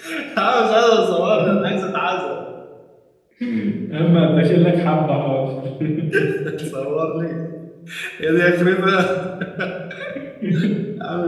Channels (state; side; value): identical; both; correlation 1.00